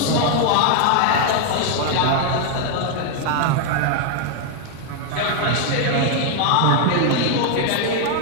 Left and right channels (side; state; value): both; different; correlation 0.00